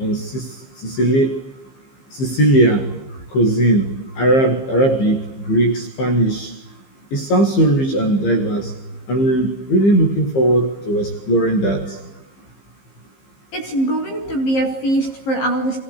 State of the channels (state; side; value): late; right; 15 ms